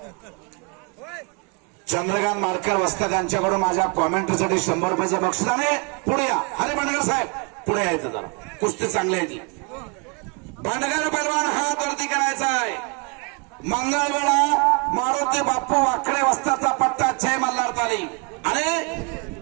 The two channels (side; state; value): left; quieter; 33.5 dB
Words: चंद्रकांत मारकर वस्ते यांच्याकडून माझ्या कॉमेंटरीसाठी 100 रुपयाचं बक्षीस. आणि पुढे या हरे बंडगर साहेब, पुढे यायचं जरा, कुस्ती चांगली आहे ती. बंडगर पैलवान हात वरती करायचा आहे. मंगळवेळा मारुती बाप्पू वाकडे वस्ताचा पट्टा 6 मल्हार ताली आणि